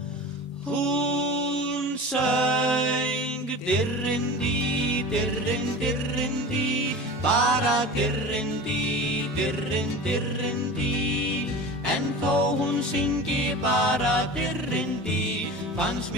Hún söng dirrindi, dirrin, dirrindi, bara dirrindi, dirrin, dirrindi. En þó hún syngi bara dirrindi, fannst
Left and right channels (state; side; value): normal; both; correlation 0.34